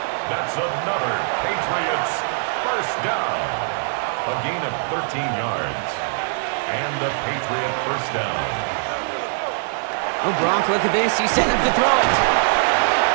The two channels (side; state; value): left; silent; 64 dB below the other